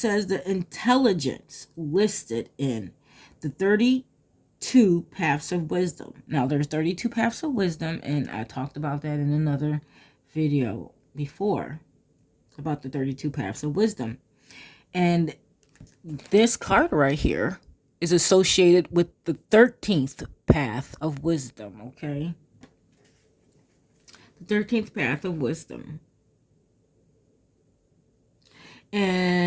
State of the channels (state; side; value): identical; both; correlation 1.00